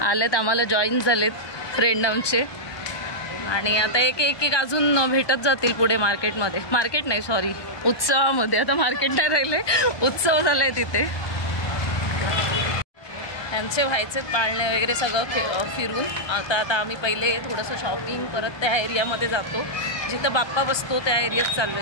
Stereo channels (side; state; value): right; late; 1.2 ms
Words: आलेत आम्हाला जॉईन झालेत फ्रेंड आमचे. आणि आता एक एक एक अजून भेटत जातील पुढे मार्केटमध्ये. मार्केट नाही सॉरी उत्सवामध्ये. आता मार्केट नाही राहिले उत्सव झालाय तिथे. त्यांचे व्हायचे पाळणे वगैरे सगळं फिरून आता आम्ही पहिले थोडंसं शॉपिंग परत त्या एरियामध्ये जातो जिथं बाप्पा बसतो. त्या एरियात चाललो